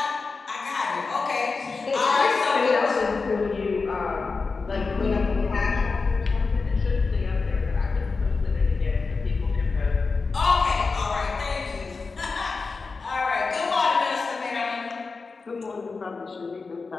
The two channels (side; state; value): right; quieter; 4.3 dB